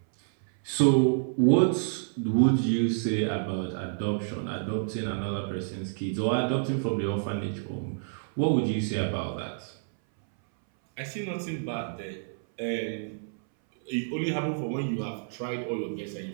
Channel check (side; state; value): left; silent; 59 dB below the other